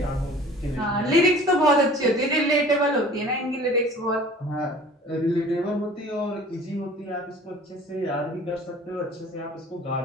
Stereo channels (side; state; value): both; normal; correlation 0.46